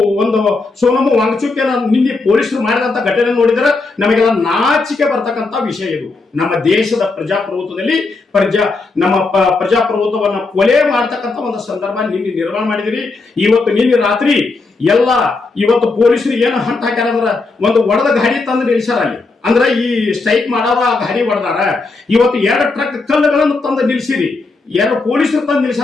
ಒಂದು ಸೋನಮ್ಮ ವಾಂಗ್ಚುಕ್ಯನ ನಿನ್ನೆ ಪೊಲೀಸರು ಮಾಡಿದಂತ ಘಟನೆ ನೋಡಿದ್ರೆ ನಮಗೆಲ್ಲ ನಾಚಿಕೆ ಬರ್ತಕ್ಕಂಥ ವಿಷಯ ಇದು. ನಮ್ಮ ದೇಶದ ಪ್ರಜಾಪ್ರಭುತ್ವದಲ್ಲಿ ನಮ್ಮ ಪ್ರಜಾಪ್ರಭುತ್ವವನ್ನ ಕೊಲೆ ಮಾಡ್ತಕ್ಕಂಥ ಒಂದು ಸಂದರ್ಭ ನಿನ್ನೆ ನಿರ್ಮಾಣ ಮಾಡಿದಿರಿ. ಇವತ್ತು ನಿನ್ನೆ ರಾತ್ರಿ ಎಲ್ಲ ಇವತ್ತು ಪೊಲೀಸರು ಏನು ಹಂಟ್ ಹಾಕ್ಯಾರ ಅಂದ್ರ ಒಂದು ಒಡೆದ ಗಾಡಿ ತಂದು ನಿಲ್ಸಾರ ಅಲ್ಲಿ. ಅಂದ್ರೆ ಈ ಸ್ಟ್ರೈಕ್ ಮಾಡಾರ ಆ ಗಾಡಿ ಹೊಡೆದಾರ. ಇವತ್ತು 2 ಟ್ರಕ್ ಕಲ್ಲುಗಳನ್ನು ತಂದು ನಿಲ್ಸಿರಿ. 2 ಪೊಲೀಸರು ತಂದು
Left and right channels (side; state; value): right; quieter; 3.7 dB